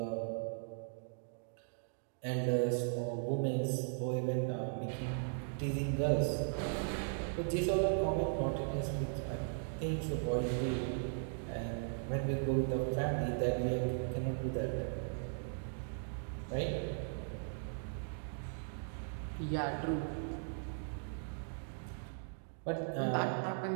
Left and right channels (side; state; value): left; silent; digital silence